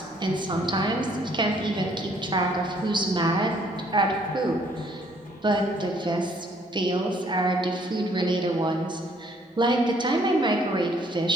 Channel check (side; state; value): both; normal; correlation 0.64